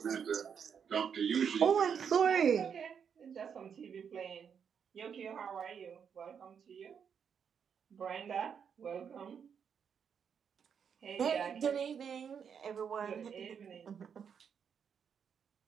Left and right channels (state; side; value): quieter; left; 7.2 dB